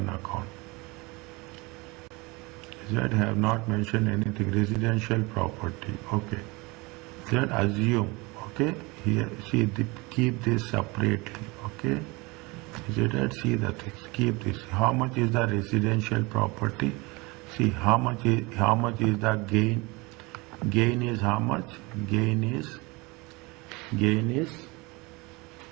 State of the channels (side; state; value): left; quieter; 25.2 dB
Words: account. That have not mentioned anything. Residential property. Okay. That assume. Okay. Here see keep this separately. Okay. Is it right? See the things. Keep this. How much is the residential property? See how much is the gain. Gain is how much? Gain is